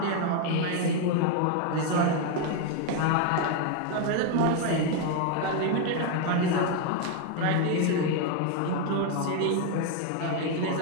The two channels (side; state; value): both; different; correlation 0.01